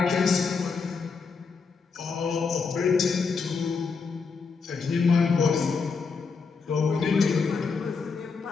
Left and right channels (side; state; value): right; quieter; 5.0 dB